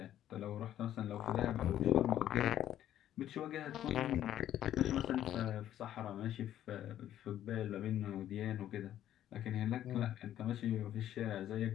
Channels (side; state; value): right; quieter; 11.7 dB